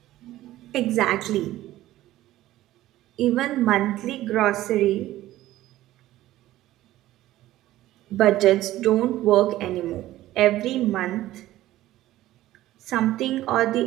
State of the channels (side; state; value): left; quieter; 15.1 dB